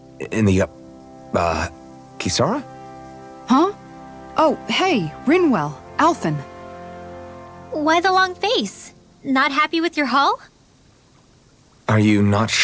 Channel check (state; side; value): identical; both; correlation 1.00